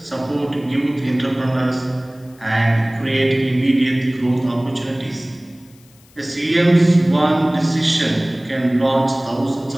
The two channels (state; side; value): noise; left; hiss, 29 dB below the sound